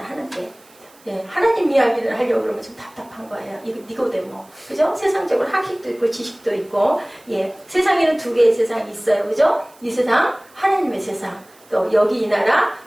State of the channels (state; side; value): noise; right; hiss, 28 dB below the sound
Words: 예, 하나님 이야기를 하려고 그러면 좀 답답한 거예요. 이거 니고데모, 그죠? 세상적으로 학식도 있고 지식도 있고, 예, 세상에는 두 개의 세상이 있어요, 그죠? 이 세상, 하나님의 세상, 또 여기 이 나라,